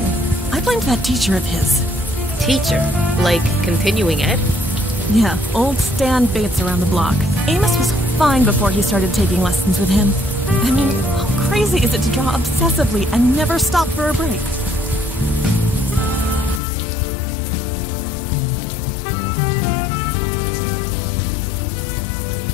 I blamed that teacher of his. Teacher? Like continuing ed? Yeah, old Stan Bates around the block. Amos was fine before he started taking lessons with him. I mean, how crazy is it to draw obsessively and never stop for a break?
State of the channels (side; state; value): right; drops out; at 16.6 s